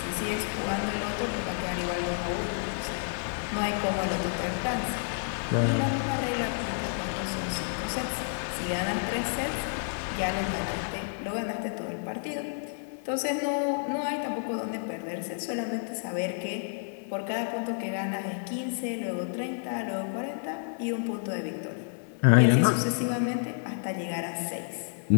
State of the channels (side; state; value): right; silent; 58 dB below the other